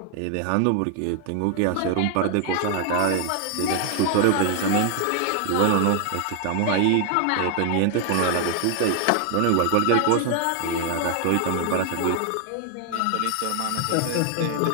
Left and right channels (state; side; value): different; both; correlation 0.00